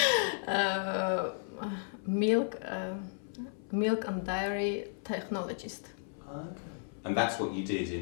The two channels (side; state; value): right; silent; 55 dB below the other